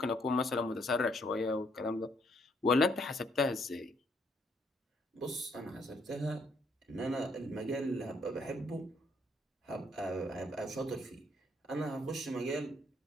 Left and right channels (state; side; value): normal; both; correlation 0.69